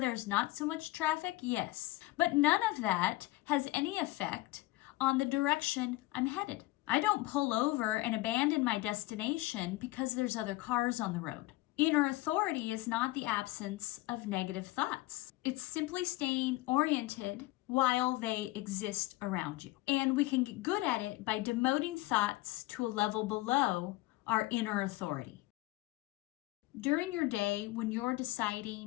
not so much traffic? Yes. But none of that has any effect on the direction I'm headed. I don't pull over and abandon my destination because there's other cars on the road. Inner authority is not the absence of negative thoughts. It's simply staying oriented while they exist around you. And we can get good at it by demoting thoughts to a level below our inner authority. During your day, when you're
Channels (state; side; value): quieter; right; 19.2 dB